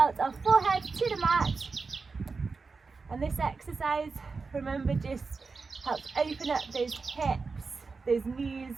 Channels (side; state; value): left; quieter; 4.5 dB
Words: our forehead to the mat. And this exercise, remember, just helps open up those hips, those knees,